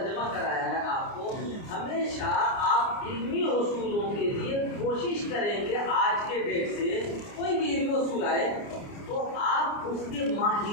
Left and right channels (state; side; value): late; right; 29 ms